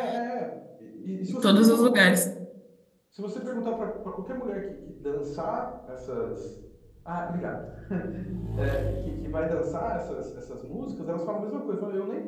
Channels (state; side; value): identical; both; correlation 1.00